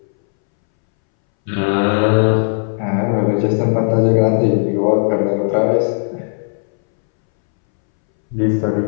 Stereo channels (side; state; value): right; silent; 66 dB below the other